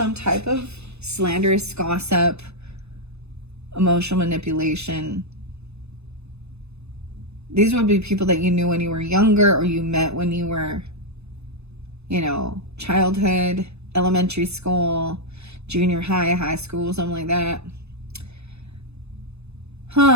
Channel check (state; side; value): late; left; 0.80 ms